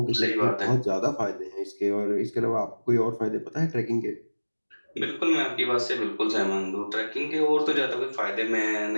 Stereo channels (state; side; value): inverted; both; correlation -1.00